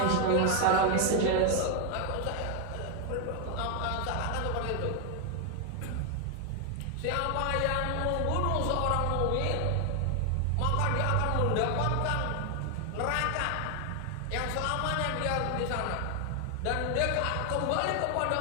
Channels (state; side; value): different; both; correlation 0.00